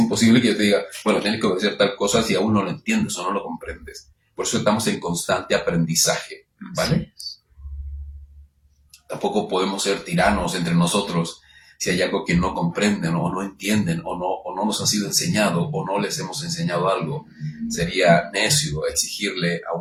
que yo te diga, bueno, tienes que obedecer tal cosa si aún no lo entiendes o no lo comprendes. Por eso estamos en constante aprendizaje, ¿vale? Tampoco podemos ser tiranos entre nosotros si hay algo que no comprenden o no entienden o no nos ha sido enseñado o no les hemos enseñado algo. Sería necio exigirle a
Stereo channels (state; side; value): identical; both; correlation 1.00